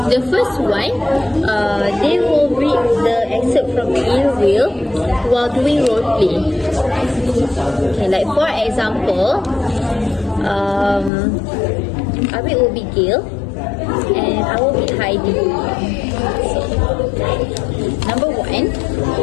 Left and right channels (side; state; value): right; drops out; at 11.1 s